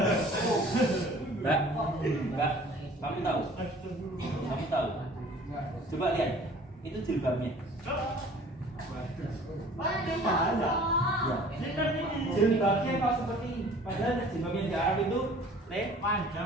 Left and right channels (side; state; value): both; normal; correlation 0.49